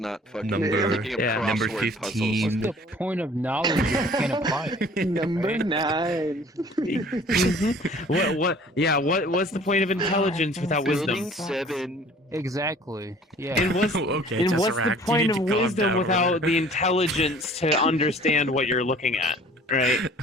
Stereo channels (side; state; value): both; normal; correlation 0.51